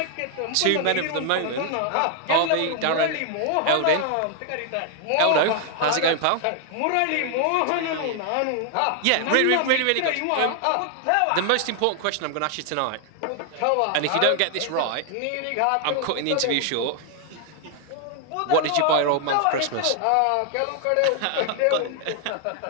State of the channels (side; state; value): both; different; correlation 0.00